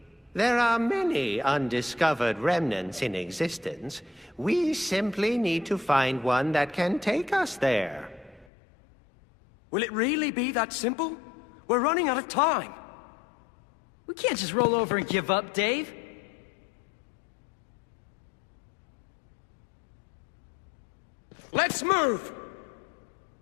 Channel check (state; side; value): drops out; right; at 8.5 s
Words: There are many undiscovered remnants in existence. We simply need to find one that can take us there. Will it really be that simple? We're running out of time. We can't just roll over and give up, Dave. Let's move!